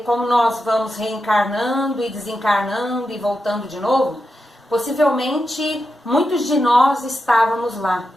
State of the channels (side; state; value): both; normal; correlation 0.88